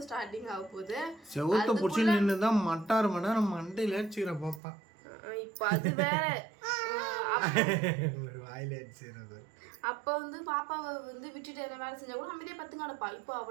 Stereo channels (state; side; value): drops out; left; at 4.6 s